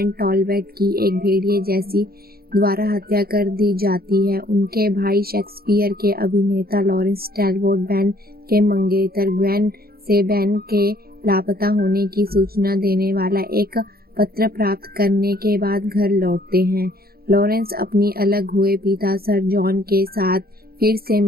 टॉलबट की एक भेड़िए जैसी द्वारा हत्या कर दी जाती है। उनके भाई शेक्सपियर के अभिनेता लॉरेंस टैलबॉट बेन के मंगेतर ग्वेन से बेन के लापता होने की सूचना देने वाला एक पत्र प्राप्त करने के बाद घर लौटते हैं। लॉरेंस अपनी अलग हुए पिता सर जॉन के साथ फिर से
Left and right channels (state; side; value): late; left; 0.44 ms